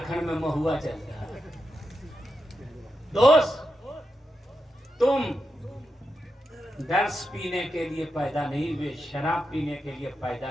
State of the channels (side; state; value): both; normal; correlation 0.87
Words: میں مہوا چلتا ہے. دوست تم درس پینے کے لیے پیدا نہیں ہوئے, شراب پینے کے لیے